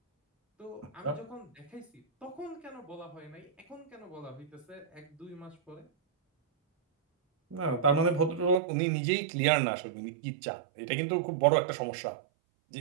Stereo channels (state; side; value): drops out; left; at 8.6 s